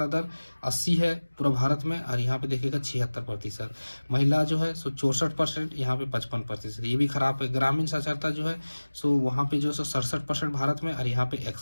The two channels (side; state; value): both; inverted; correlation -1.00